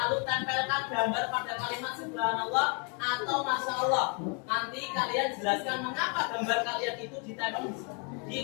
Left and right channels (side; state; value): right; quieter; 36.1 dB